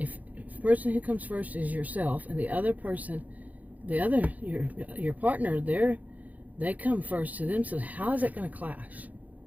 the person who comes first is yourself, and the other person, your partner, they come first to them, so how is that going to clash?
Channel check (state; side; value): late; left; 0.077 ms